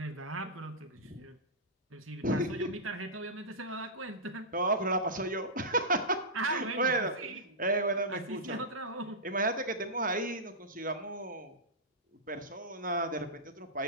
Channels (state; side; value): normal; both; correlation -0.14